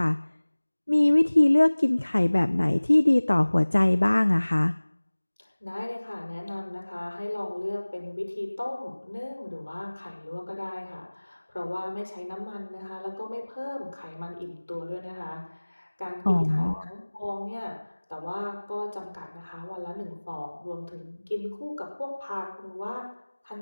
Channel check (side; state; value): both; inverted; correlation -1.00